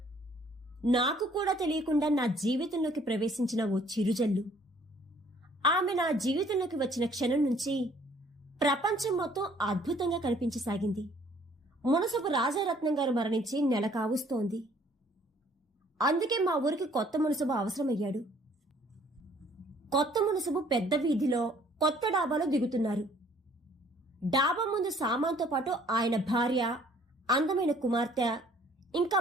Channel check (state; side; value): normal; both; correlation 0.59